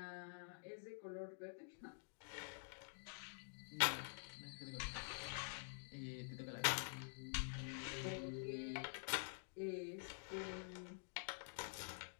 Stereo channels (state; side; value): silent; right; digital silence